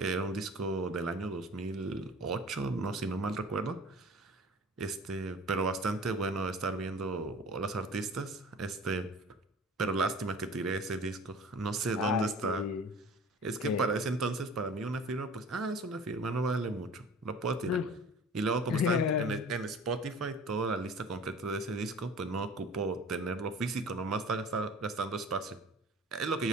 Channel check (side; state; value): both; normal; correlation 0.43